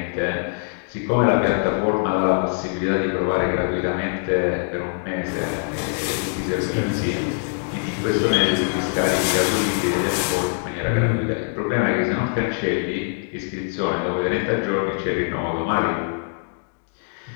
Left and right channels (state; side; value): silent; right; digital silence